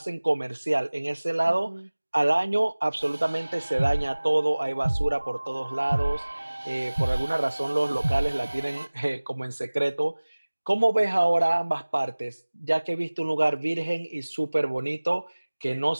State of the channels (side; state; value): both; inverted; correlation -1.00